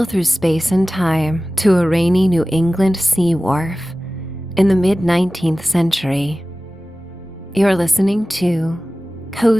through space and time to a rainy New England sea wharf in the mid-19th century. You're listening to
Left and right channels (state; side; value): normal; both; correlation 0.96